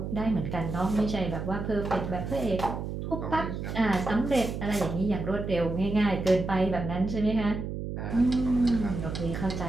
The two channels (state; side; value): noise; right; hum, 5 dB below the sound